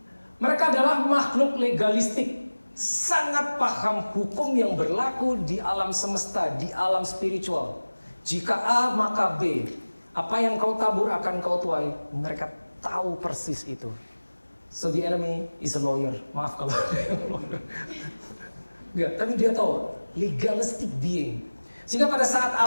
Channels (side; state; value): both; inverted; correlation -1.00